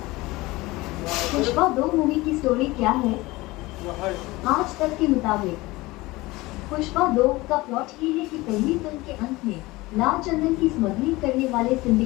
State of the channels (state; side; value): quieter; right; 20.8 dB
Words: पुष्पा 2 मूवी की स्टोरी क्या है? आज तक के मुताबिक पुष्पा 2 का प्लॉट ये है कि पहली फिल्म के अंत में लाल चंदन की स्मगलिंग करने वाले